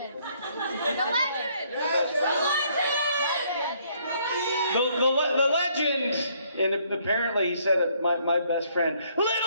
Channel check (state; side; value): inverted; both; correlation -0.67